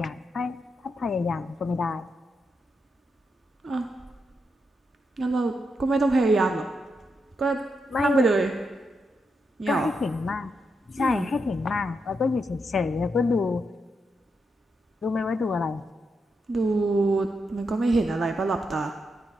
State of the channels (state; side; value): normal; both; correlation 0.83